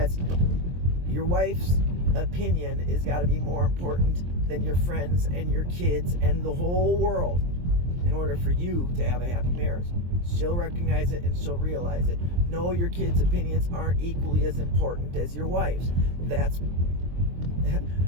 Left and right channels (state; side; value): late; left; 23 ms